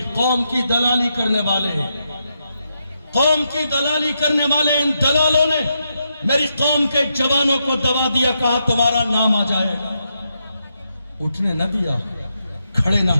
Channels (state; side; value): inverted; both; correlation -0.83